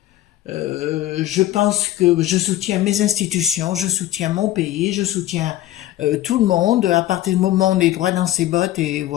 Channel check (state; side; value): quieter; right; 14.4 dB